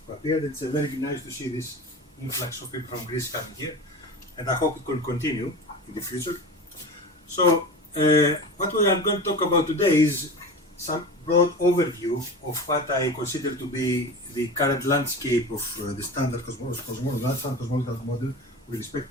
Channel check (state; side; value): normal; both; correlation 0.30